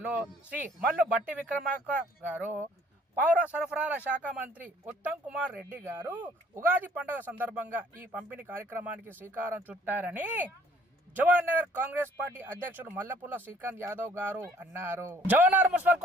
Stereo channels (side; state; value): both; normal; correlation 0.59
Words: శ్రీ మల్లు భట్టి విక్రమార్క గారు, పౌర సరఫరాల శాఖ మంత్రి ఉత్తమ్ కుమార్ రెడ్డి గారు ఉగాది పండుగ సందర్భంగా ఈ పంపిణీ కార్యక్రమానికి శ్రీకారం చుట్టారని జవహర్నగర్ కాంగ్రెస్ పార్టీ అధ్యక్షుడు మల్లపుల్ల శ్రీకాంత్ యాదవ్ గారు అన్నారు. జవహర్నగర్ మున్సిపల్